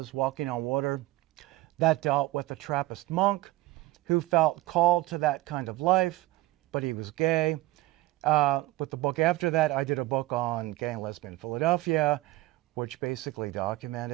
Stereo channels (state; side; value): quieter; left; 17.8 dB